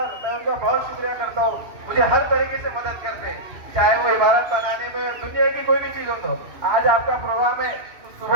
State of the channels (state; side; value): late; left; 2.6 ms